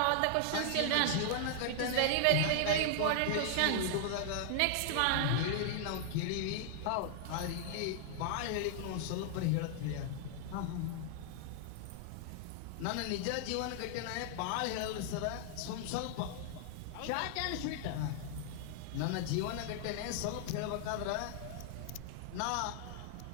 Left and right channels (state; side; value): different; both; correlation -0.01